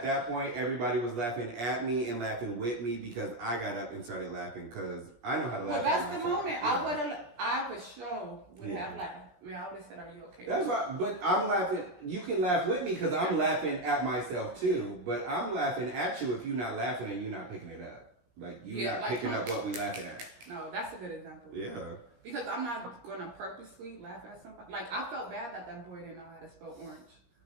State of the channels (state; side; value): late; left; 17 ms